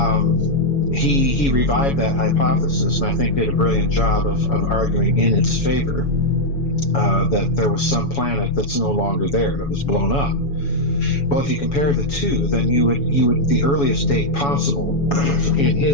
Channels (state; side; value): late; right; 7.1 ms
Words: He revived that hypothesis, and I think did a brilliant job of arguing in its favor, that there was some planet that's no longer there, that was blown up. Well, if you compare the two, then you would the earliest date possible, in